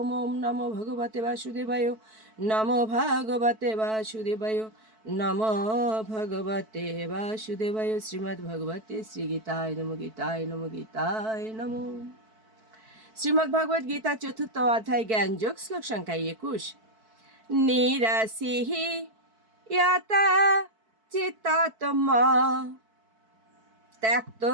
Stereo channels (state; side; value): late; left; 4.6 ms